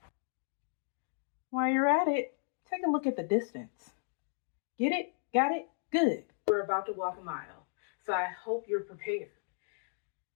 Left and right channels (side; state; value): right; silent; digital silence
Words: While you're at it, take a look at the distance. Get it? Got it? Good. We're about to walk a mile, so I hope you're prepared.